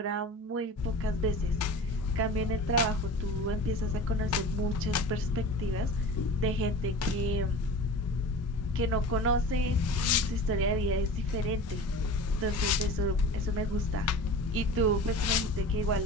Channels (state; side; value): normal; both; correlation 0.36